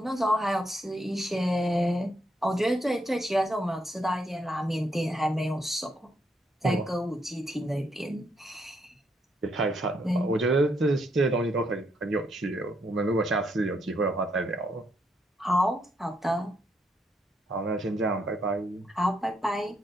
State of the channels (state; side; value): normal; both; correlation 0.76